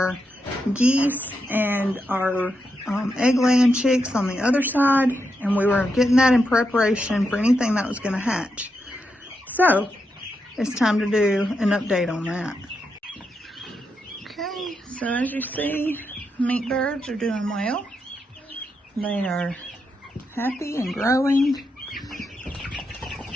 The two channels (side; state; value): both; normal; correlation 0.84